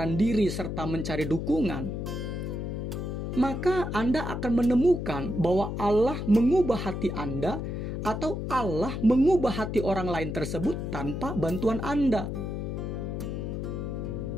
diri serta mencari dukungan, maka Anda akan menemukan bahwa Allah mengubah hati Anda atau Allah mengubah hati orang lain tersebut tanpa bantuan Anda.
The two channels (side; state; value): left; noise; hum, 4 dB below the sound